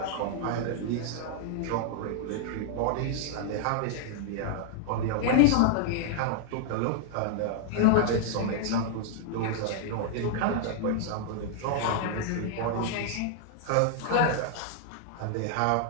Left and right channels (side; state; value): both; different; correlation -0.01